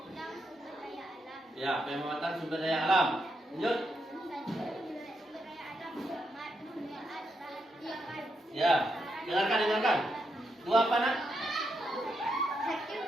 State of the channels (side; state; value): both; normal; correlation 0.82